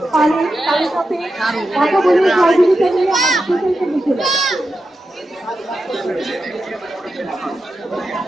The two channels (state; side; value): normal; both; correlation 0.89